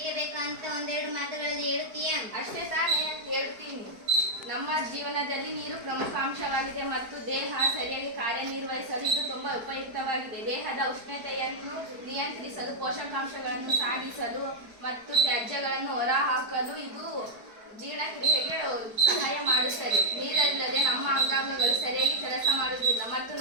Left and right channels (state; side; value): late; left; 4.6 ms